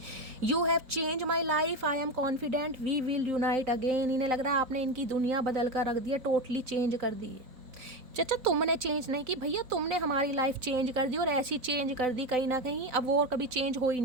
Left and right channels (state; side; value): late; left; 4.0 ms